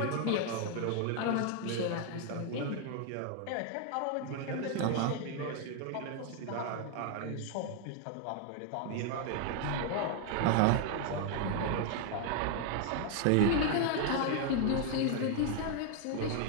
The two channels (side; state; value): both; different; correlation 0.00